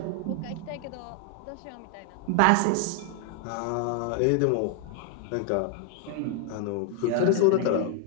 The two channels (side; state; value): both; different; correlation 0.00